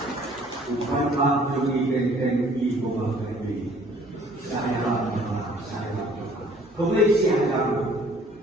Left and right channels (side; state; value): both; normal; correlation 0.56